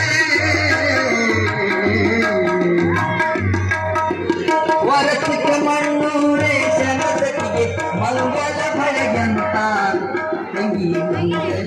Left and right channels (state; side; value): identical; both; correlation 1.00